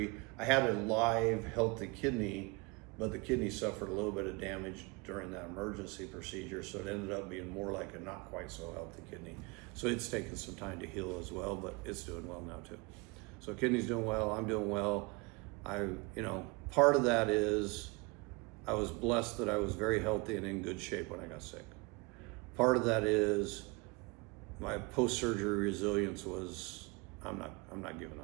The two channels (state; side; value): quieter; left; 28.0 dB